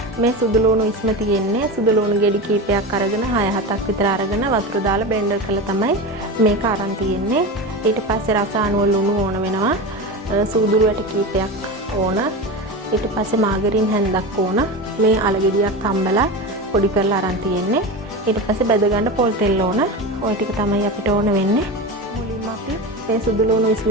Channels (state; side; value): normal; both; correlation 0.24